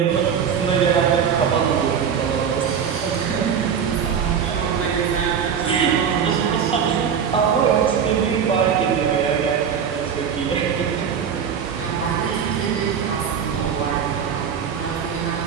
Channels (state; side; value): quieter; left; 7.5 dB